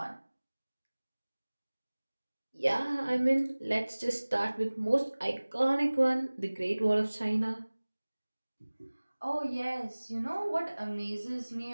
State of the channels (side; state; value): both; inverted; correlation -1.00